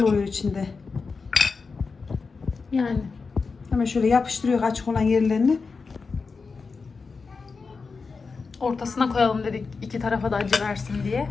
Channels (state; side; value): quieter; right; 4.7 dB